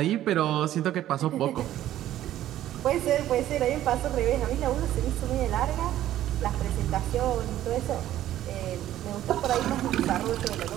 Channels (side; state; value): left; quieter; 12.9 dB